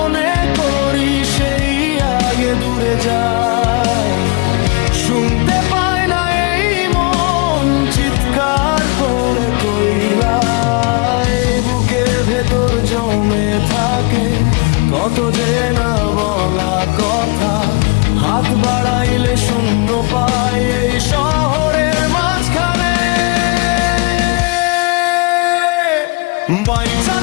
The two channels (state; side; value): quieter; right; 29.2 dB